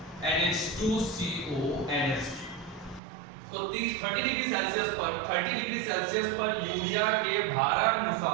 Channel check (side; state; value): left; drops out; at 3.0 s